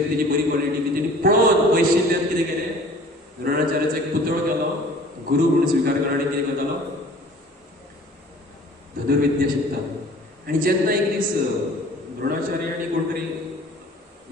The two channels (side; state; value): both; normal; correlation 0.49